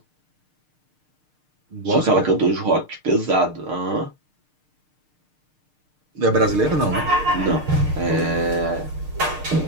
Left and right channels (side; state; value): left; late; 6.6 ms